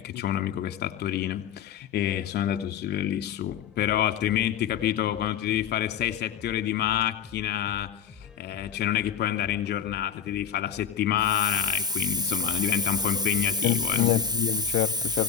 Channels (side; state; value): right; quieter; 8.4 dB